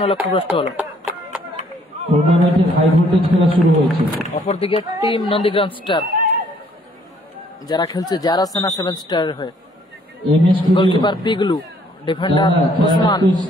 লক্ষ্যভ্রষ্ট হলো। টুর্নামেন্টের হাই ভোল্টেজ খেলা শুরু হয়েছে। অপরদিকে টিম নন্দীগ্রাম স্টার যারা খেলছে যারা সেনা 7 স্টারের হয়ে। Goalkeeper Piglu, defender Osman.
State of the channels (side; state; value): both; normal; correlation 0.63